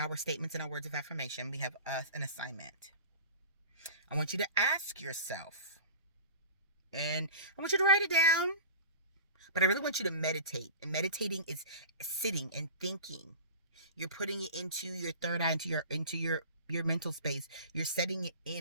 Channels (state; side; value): inverted; both; correlation -0.38